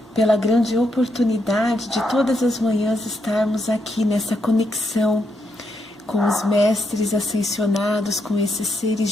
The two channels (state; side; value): normal; both; correlation 0.80